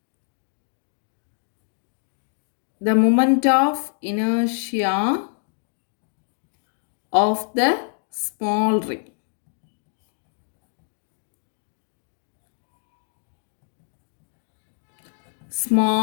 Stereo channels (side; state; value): right; silent; 61 dB below the other